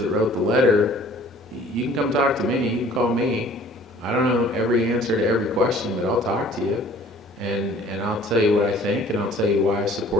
wrote the letter, you can come talk to me, you can call me. I don't know every answer to every question, but I'll talk to you. And I'll tell you what I think, and I'll tell you why I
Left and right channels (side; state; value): both; normal; correlation 0.52